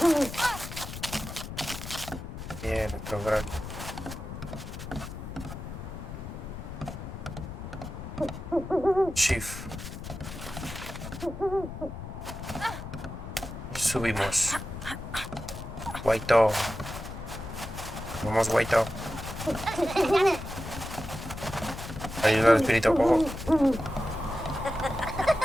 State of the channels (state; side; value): noise; left; rumble, 9 dB below the sound